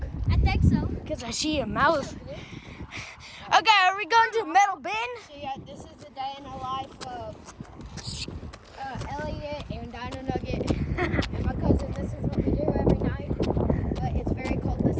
I think so. Because I see a mouth. Okay, are we going to Metal Bin? So yeah, this is the day in the life of Elliot and Dino Nugget and my cousin. This is what we do every night. But it's very cold this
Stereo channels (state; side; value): identical; both; correlation 1.00